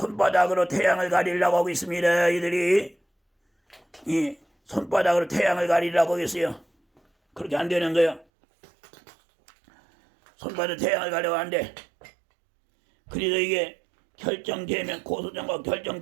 태양을 가리려고 하고 있습니다. 이들이 손바닥으로 태양을 가리려고 했어요. 그렇게 안 되는 거예요. 손바닥 태양을 가려고 하는데, 그래서 이게 결정제명, 고소장과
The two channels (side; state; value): left; drops out; at 8.2 s